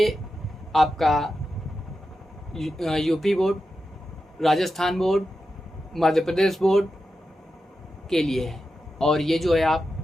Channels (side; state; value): both; normal; correlation 0.90